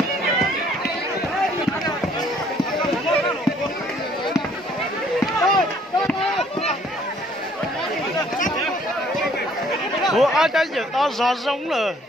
Ủa ai cái gì to gió giống rồi.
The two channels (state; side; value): normal; both; correlation 0.61